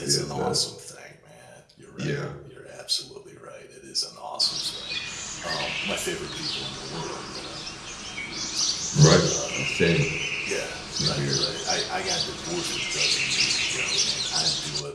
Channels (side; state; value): both; identical; correlation 1.00